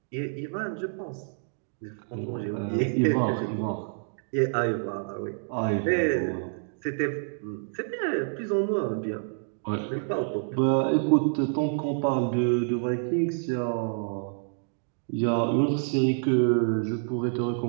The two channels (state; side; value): silent; left; digital silence